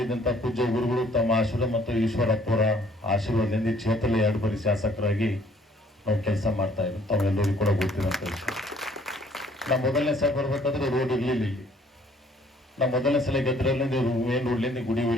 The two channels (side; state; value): both; normal; correlation 0.60